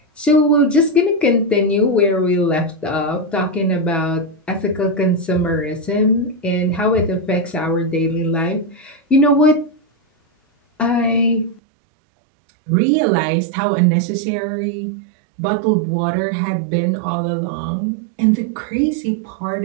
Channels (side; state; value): left; drops out; at 11.6 s